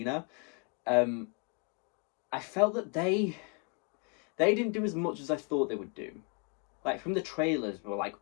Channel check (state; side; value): quieter; right; 33.3 dB